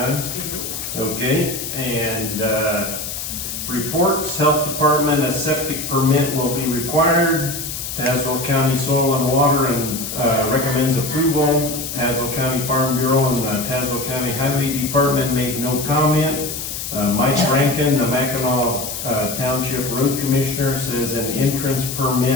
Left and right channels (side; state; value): left; noise; hiss, 6 dB below the sound